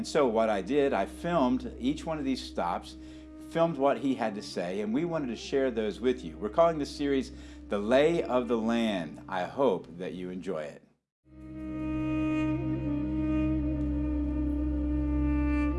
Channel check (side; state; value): both; identical; correlation 1.00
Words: so what I did, I filmed each one of these stops, filmed what he had to say, and we wanted to share those with you. We're calling this series The Lay of the Land. I hope that you enjoy it.